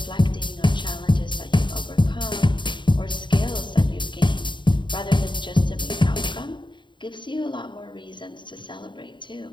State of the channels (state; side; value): late; right; 0.23 ms